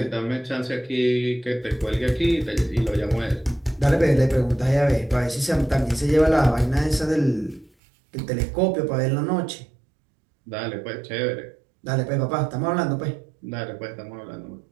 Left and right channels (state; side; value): drops out; left; at 7.7 s